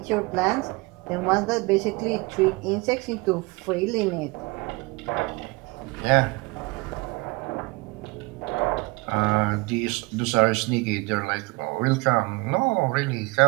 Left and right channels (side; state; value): left; quieter; 25.5 dB